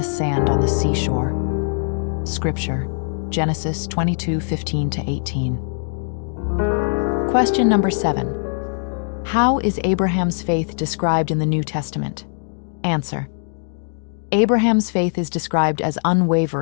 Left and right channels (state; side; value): silent; right; digital silence